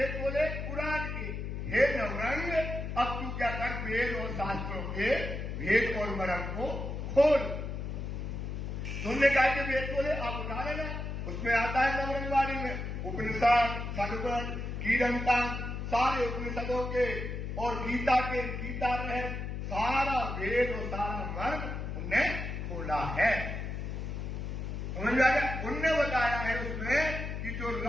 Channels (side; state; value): left; noise; hum, 5 dB below the sound